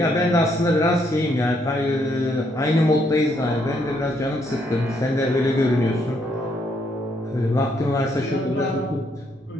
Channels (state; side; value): normal; both; correlation 0.72